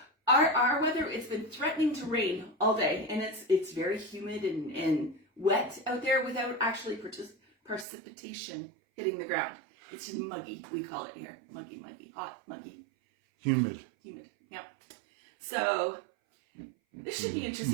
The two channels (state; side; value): drops out; left; at 7.9 s